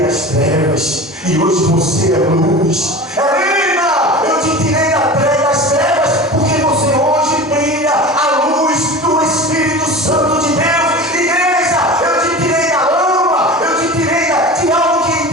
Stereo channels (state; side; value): normal; both; correlation 0.33